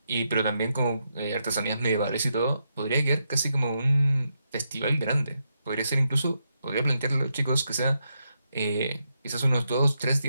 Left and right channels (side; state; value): both; inverted; correlation -0.83